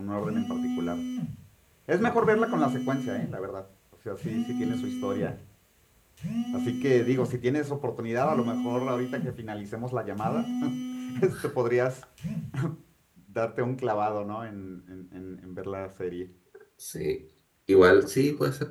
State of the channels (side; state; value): both; identical; correlation 1.00